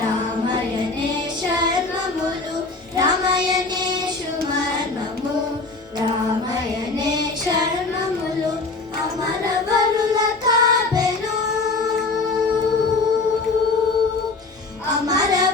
శర్మములు రామయనేషు మర్మము రామయనే శర్మములు అమరవరుల కాపెను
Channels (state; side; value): quieter; right; 3.6 dB